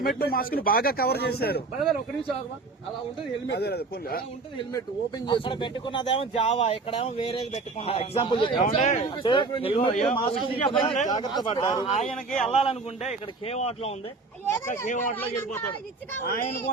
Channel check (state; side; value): quieter; left; 3.8 dB